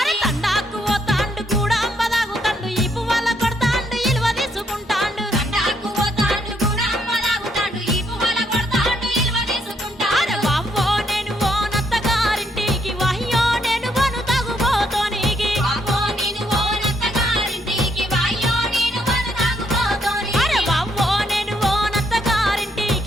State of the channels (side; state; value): both; normal; correlation 0.74